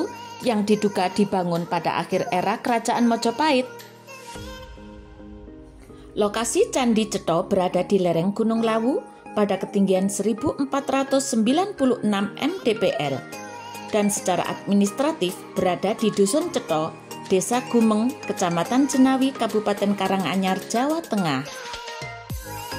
yang diduga dibangun pada akhir era Kerajaan Majapahit. Lokasi Candi Cetha berada di lereng Gunung Lawu pada ketinggian 1496 mdpl dan secara administratif berada di Dusun Cetha, Desa Gumeng, Kecamatan Jenawi, Kabupaten Karanganyar, Jawa Tengah.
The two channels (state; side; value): identical; both; correlation 1.00